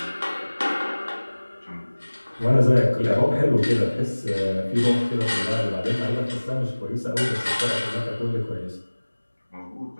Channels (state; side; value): inverted; both; correlation -1.00